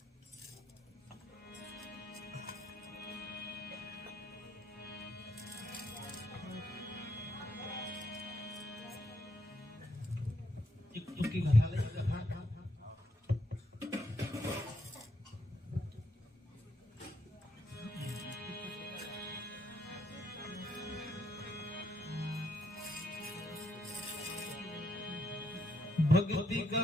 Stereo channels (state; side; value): normal; both; correlation 0.76